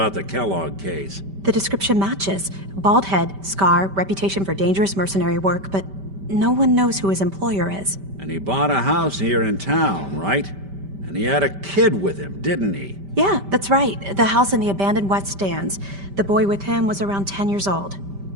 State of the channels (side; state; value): left; late; 5.1 ms